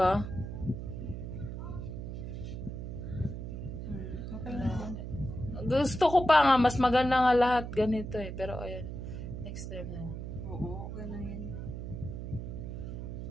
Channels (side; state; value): right; noise; hum, 6 dB below the sound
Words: Okay lang. Gusto ko pa nga, mas maganda nga lahat ganito eh. Pero ayan, next time na. Oo, gano'n yun.